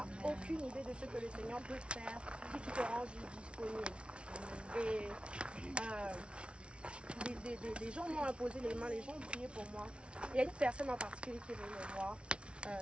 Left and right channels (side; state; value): left; late; 0.059 ms